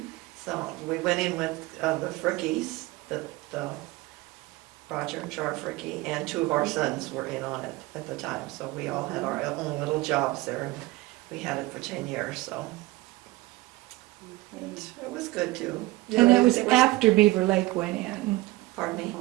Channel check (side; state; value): left; quieter; 19.9 dB